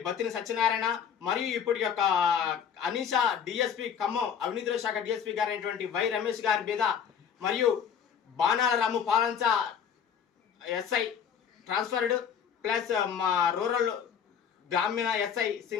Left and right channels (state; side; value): quieter; right; 7.8 dB